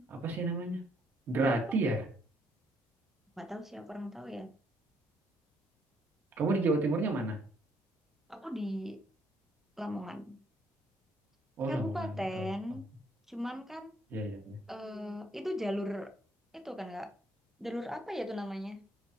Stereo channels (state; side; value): normal; both; correlation 0.69